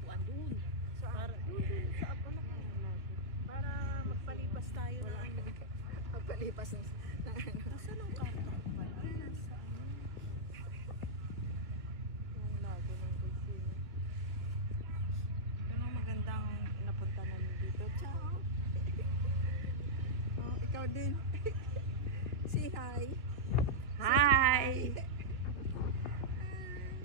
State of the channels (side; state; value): left; late; 2.3 ms